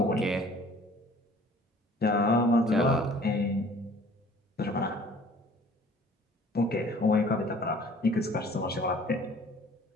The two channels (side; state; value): both; normal; correlation 0.52